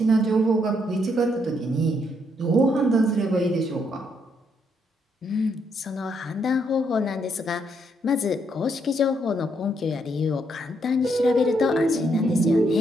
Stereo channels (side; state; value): both; normal; correlation 0.75